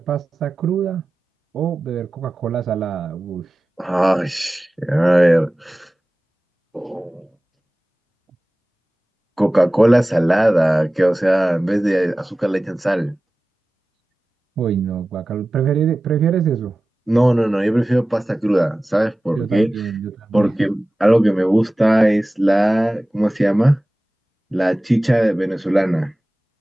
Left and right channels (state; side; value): normal; both; correlation 0.96